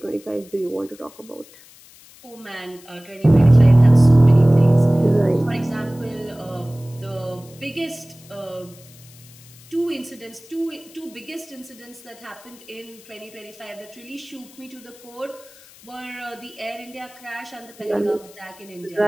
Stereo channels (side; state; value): left; noise; hiss, 23 dB below the sound